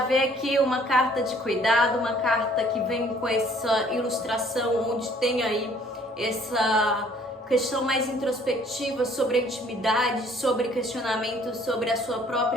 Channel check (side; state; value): both; normal; correlation 0.58